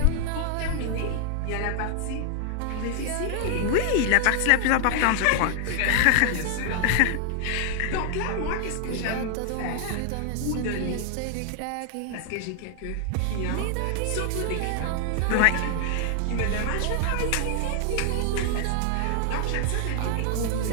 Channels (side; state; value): both; different; correlation 0.00